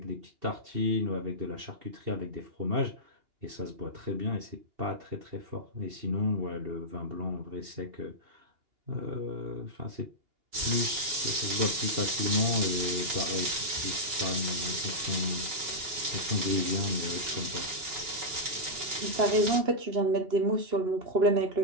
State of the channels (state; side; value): late; left; 2.8 ms